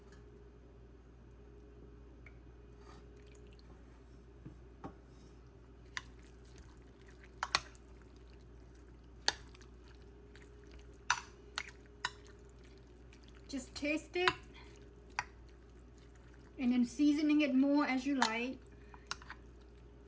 Just taste it and then seasoning it more as you like.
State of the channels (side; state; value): both; identical; correlation 1.00